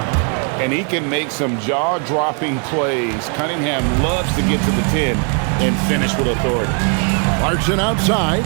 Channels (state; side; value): quieter; left; 39.3 dB